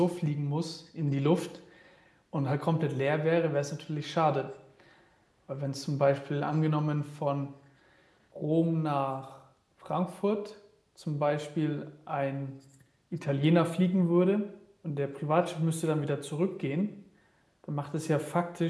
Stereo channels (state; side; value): identical; both; correlation 1.00